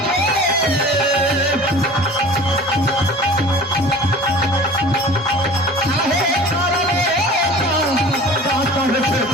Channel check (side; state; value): both; normal; correlation 0.42